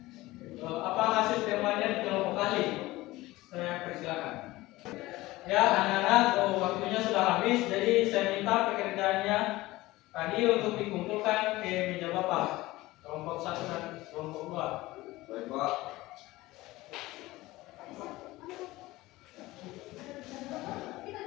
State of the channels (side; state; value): right; quieter; 18.8 dB